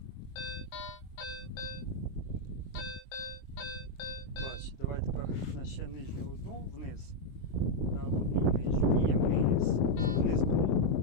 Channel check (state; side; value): late; right; 23 ms